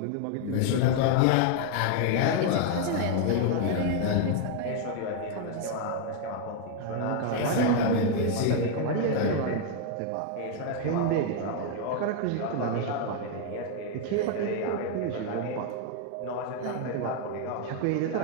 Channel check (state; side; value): different; both; correlation 0.00